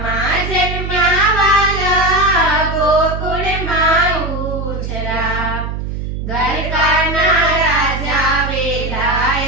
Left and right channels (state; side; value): noise; right; hum, 5 dB below the sound